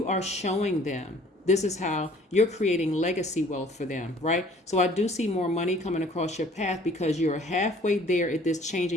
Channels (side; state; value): both; normal; correlation 0.54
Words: are showing them. This is how you're creating legacy wealth for them, right? So I do see more money coming across your path because you're halfway there at this change